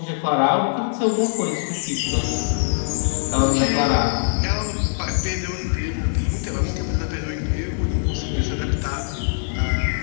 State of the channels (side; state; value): right; silent; 64 dB below the other